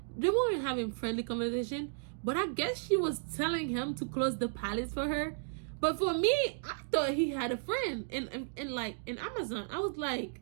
they weren't having friendly conversation. But I guess she was telling him to close the palace for her. But for me, I thought he had a friend in Amazon. I was like,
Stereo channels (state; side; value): silent; left; digital silence